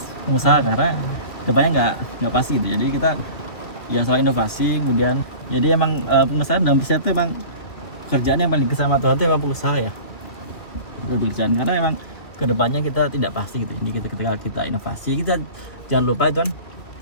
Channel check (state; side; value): late; right; 2.5 ms